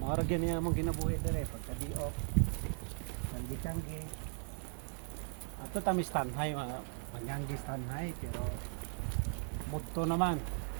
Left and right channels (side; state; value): left; silent; 53 dB below the other